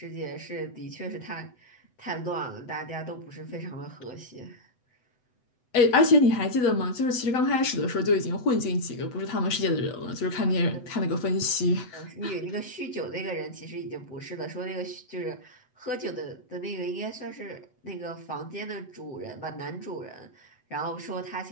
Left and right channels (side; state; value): right; late; 8.0 ms